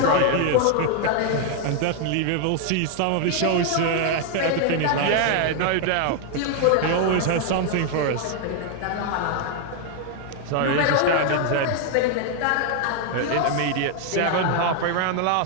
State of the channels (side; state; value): both; different; correlation 0.00